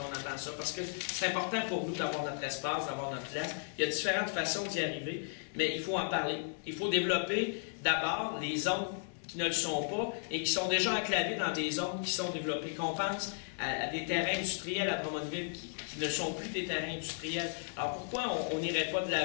on entend ça, parce que c'est important pour nous d'avoir notre espace, d'avoir notre place. Il y a différentes façons d'y arriver, mais il faut en parler. Il faut développer d'abord les zones qui ne le sont pas et qui sont déjà enclavées dans des zones qui sont développées. Qu'on pense à des terrains industriels à Drummondville qui qui ne sont plus des terrains industriels. Alors pourquoi on n'irait pas de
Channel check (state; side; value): silent; right; digital silence